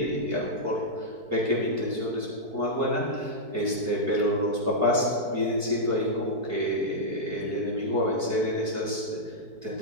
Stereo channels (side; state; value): left; late; 4.6 ms